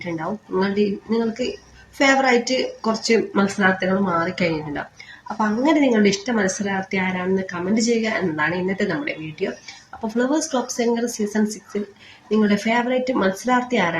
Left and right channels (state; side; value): identical; both; correlation 1.00